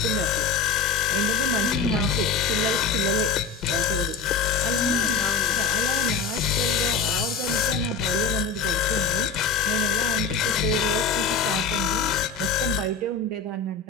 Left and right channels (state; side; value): quieter; right; 5.1 dB